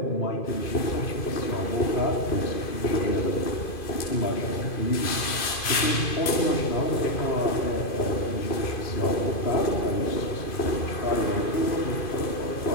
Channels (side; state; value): right; late; 2.5 ms